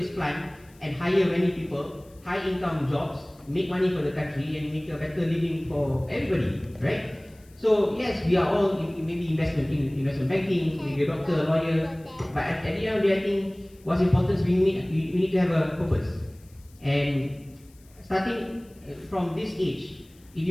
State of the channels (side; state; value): left; noise; hiss, 29 dB below the sound